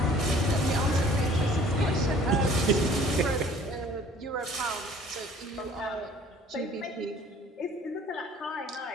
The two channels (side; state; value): both; normal; correlation 0.53